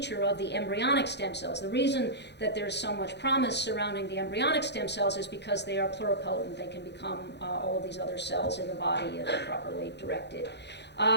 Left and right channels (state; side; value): late; right; 0.50 ms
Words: of the embryonic stem cells. The reason that there's so much promise surrounding the embryonic stem cells is because they are pluripotent. They can become all of these other cells in the body if properly directed.